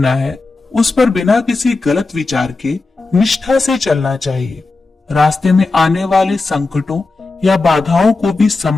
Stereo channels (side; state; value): right; quieter; 3.6 dB